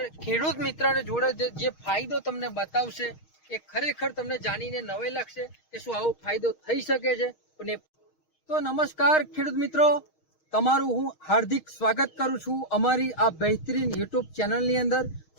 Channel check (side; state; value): right; late; 6.4 ms